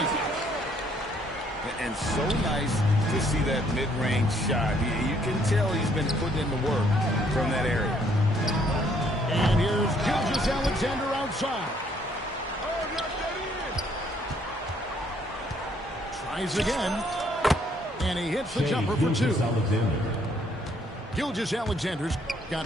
And so nice to see that mid-range shot. You can tell he's been putting in the work from that area. And here's Gilgeous-Alexander outside. Tries again. And he hits the jumper for 2. Gilgeous-Alexander's got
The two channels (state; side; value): normal; both; correlation 0.66